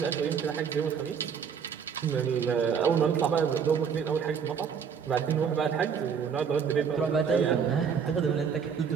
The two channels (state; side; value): quieter; left; 6.9 dB